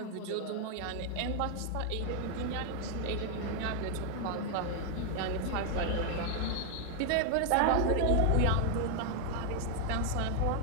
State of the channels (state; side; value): different; both; correlation 0.00